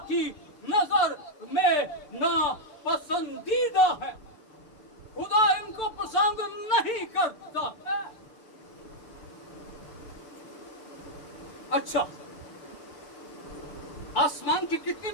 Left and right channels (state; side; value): late; right; 6.8 ms